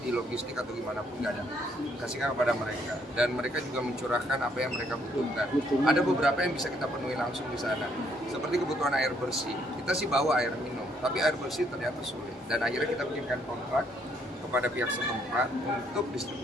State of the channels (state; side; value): normal; both; correlation 0.69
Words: di logistik atau gimana pun, nggak ada. Kasihkan kepada mereka, dan mereka juga mencurahkan apa yang mereka butuhkan. Ada beberapa yang bisa kita penuhi langsung di sana, seperti kebutuhan air bersih. Kita sih bawa air minum, tapi air bersih ternyata sulit. Dan akhirnya kita bikinkan kontrak kepada pihak setempat untuk